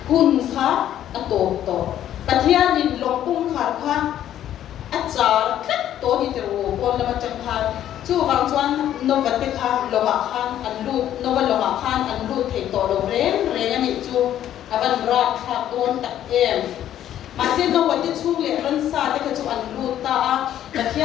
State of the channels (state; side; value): quieter; right; 11.4 dB